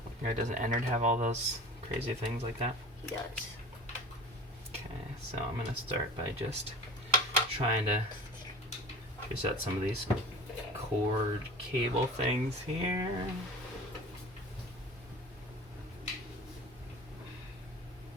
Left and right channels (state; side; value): normal; both; correlation 0.38